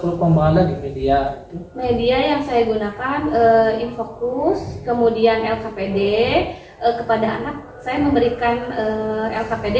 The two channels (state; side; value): identical; both; correlation 1.00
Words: pengembangan lagi media itu? Media yang saya gunakan Infocus, kemudian LKPD. Kepada anak saya memberikan